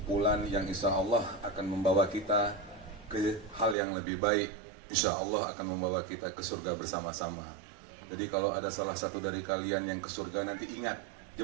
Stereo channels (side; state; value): left; drops out; at 3.8 s